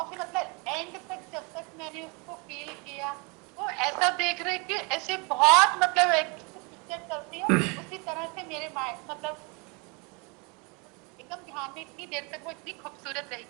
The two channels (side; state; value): left; quieter; 30.8 dB